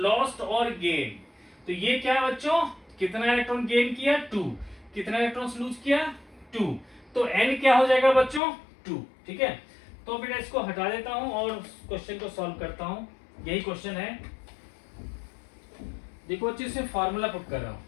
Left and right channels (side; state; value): right; drops out; at 8.4 s